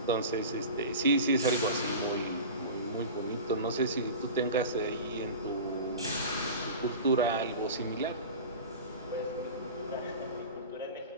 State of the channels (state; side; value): inverted; both; correlation -0.33